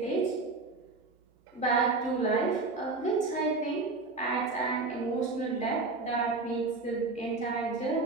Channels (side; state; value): left; quieter; 3.7 dB